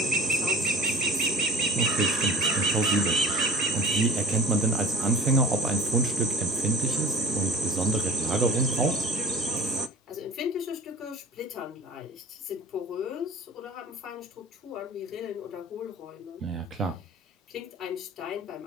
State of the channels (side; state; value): both; normal; correlation 0.41